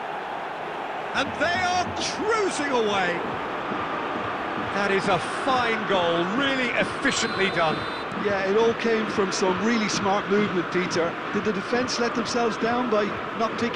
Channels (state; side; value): identical; both; correlation 1.00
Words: And they are cruising away. That is a fine goal, really efficiently done. Yeah, it all came from some really smart movement, Peter. Did the defence let themselves down by not